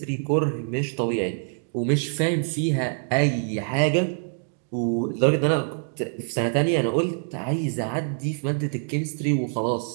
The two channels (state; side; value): silent; left; 62 dB below the other